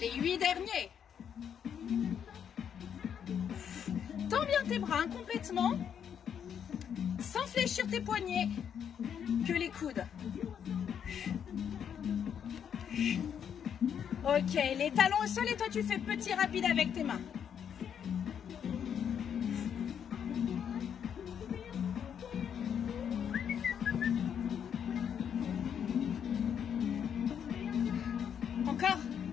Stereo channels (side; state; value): right; quieter; 8.2 dB